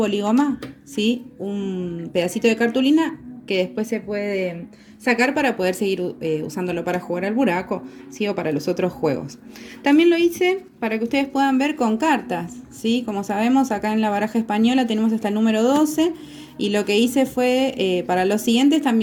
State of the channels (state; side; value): identical; both; correlation 1.00